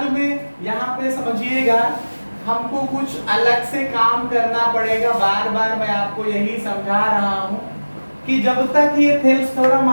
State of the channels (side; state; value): both; inverted; correlation -1.00